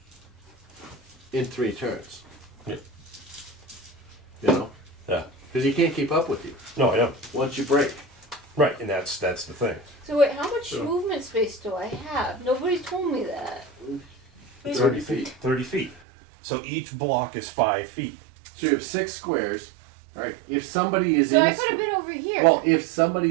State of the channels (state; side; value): drops out; left; at 16.0 s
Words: in 3 turns. Yeah. You know? Yeah. Because he can't keep up with you No, I know. once you break. Right, and that's the thing. So wait, how much Sure. movement space do I have? Nobody's told me that. 30 feet. 30 feet. So each block is 5 feet. So you have 6 squares. Right? If somebody is So in I a could have been over here. well, if